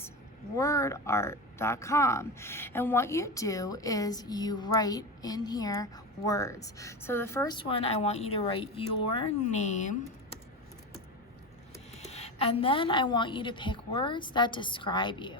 wordart.com. And what you do is you write in here words. So the first one, I want you to write your name. And then I want you to pick words that describe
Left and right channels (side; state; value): both; normal; correlation 0.21